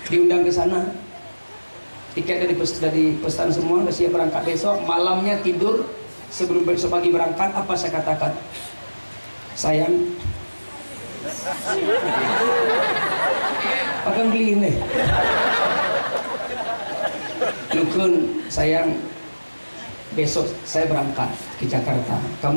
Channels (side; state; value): both; inverted; correlation -1.00